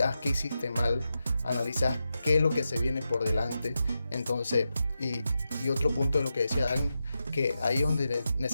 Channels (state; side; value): inverted; both; correlation -0.88